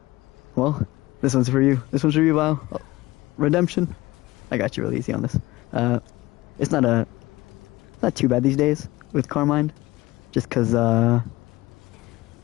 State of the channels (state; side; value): quieter; right; 19.1 dB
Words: Well, this one's for you. This one's for you, Vile. Oh, redemption. I got you real easy on this. It's not too bad these days with Carmine. Just because, well,